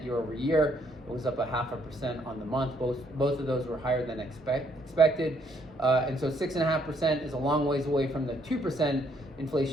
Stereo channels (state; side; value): normal; both; correlation 0.69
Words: year over year. It was up 0.5% on the month. Both of those were higher than expected. And so 6.5% is a long ways away from the 2%